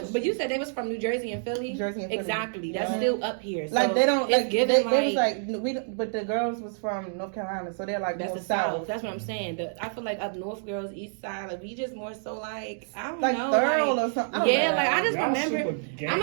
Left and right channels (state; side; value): silent; left; digital silence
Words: me. but you said they was from New Jersey and Philly. Jersey and Philly. Exactly. That's Yeah. still up here. So Like they don't it's like given they was like we don't, but the girls was from North Carolina, so they're like that's more the South. south. That's what I'm saying. I feel like up north girls, east side, like we just more so like I don't Like know, thorough like, or something. I don't yeah, know. like I just Y'all remember. super gang I'm